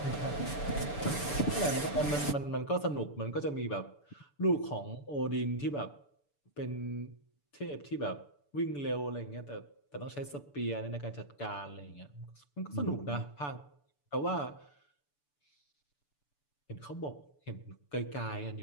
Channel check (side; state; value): right; late; 6.9 ms